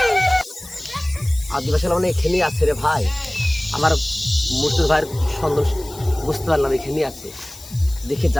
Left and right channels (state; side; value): noise; left; hiss, 17 dB below the sound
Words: আদিবাসী মানে এখানেই আছে রে ভাই। আমার মূর্তির ভাইয়ের সন্দেহ বুঝতে পারলাম, এখানেই আছে। দেখে